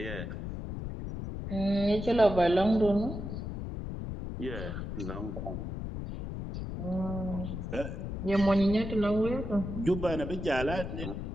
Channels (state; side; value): noise; left; rumble, 6 dB below the sound